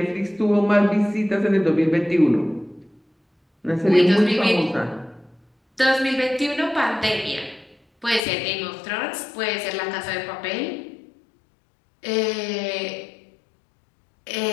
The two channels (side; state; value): right; drops out; at 8.2 s